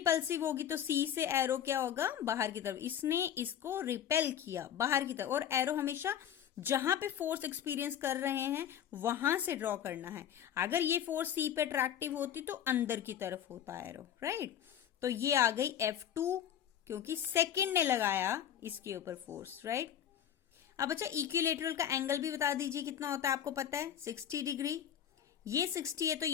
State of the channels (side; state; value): right; quieter; 9.8 dB